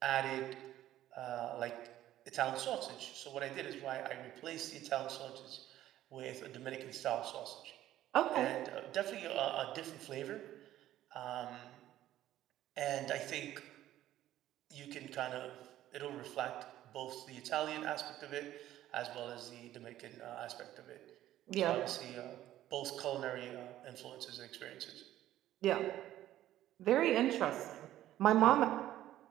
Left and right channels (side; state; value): left; quieter; 13.3 dB